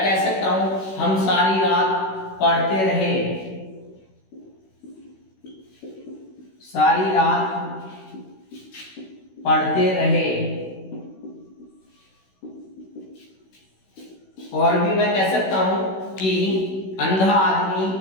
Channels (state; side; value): late; right; 16 ms